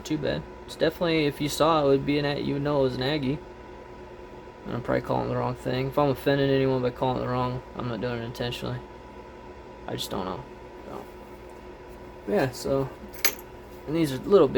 too bad. It's definitely, if you saw it, would be you would know it was an Agee. And I'm probably calling the wrong thing. If I'm offending anyone by calling it the wrong, I'm not doing it intentionally. I just don't know. So, yeah, so... and these are little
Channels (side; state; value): both; identical; correlation 1.00